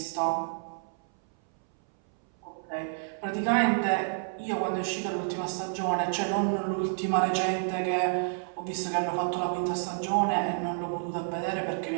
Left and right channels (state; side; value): silent; left; 58 dB below the other